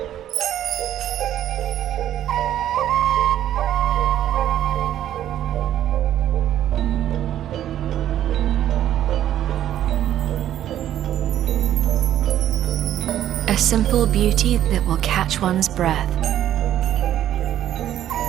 A simple beauty that will catch one's breath.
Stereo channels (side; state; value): left; quieter; 11.6 dB